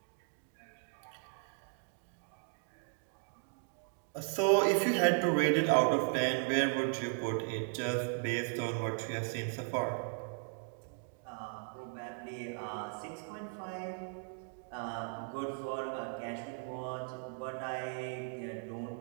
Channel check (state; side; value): silent; left; 53 dB below the other